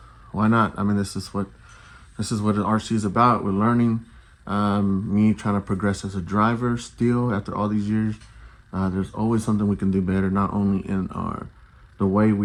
not? I mean, this is what an RC is about. We're learning. Me trying to progress as a driver still after all these years. There's always something we can do better, not only in the way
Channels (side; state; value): both; identical; correlation 1.00